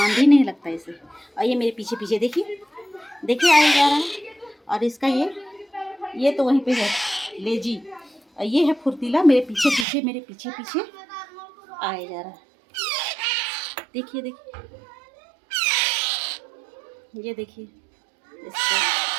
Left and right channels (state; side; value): drops out; left; at 9.9 s